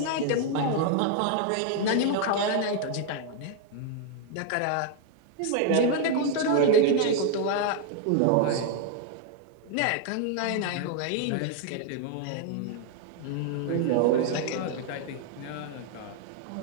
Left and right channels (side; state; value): both; different; correlation 0.00